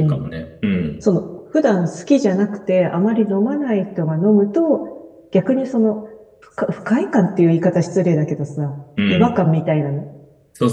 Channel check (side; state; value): both; identical; correlation 1.00